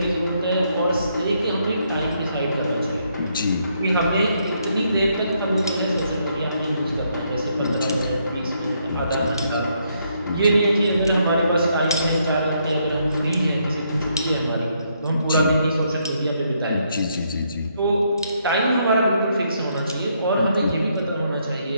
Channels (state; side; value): inverted; both; correlation -0.74